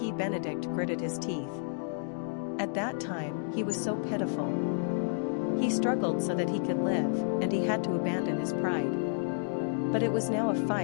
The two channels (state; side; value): silent; right; digital silence